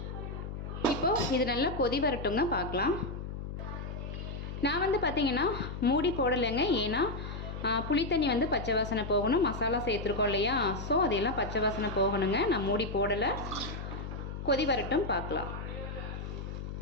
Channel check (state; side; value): noise; left; hum, 7 dB below the sound